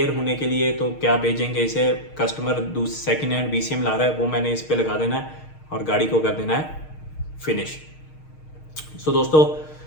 होने के लिए तो क्या भेजेंगे इसे, कस्टमर सेकेंड हैंड बीसीएम ला रहा है, वो मैंने इस पे लगा देना है और गाड़ी को कर देना है फिनिश। सो दोस्तों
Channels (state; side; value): late; right; 6.5 ms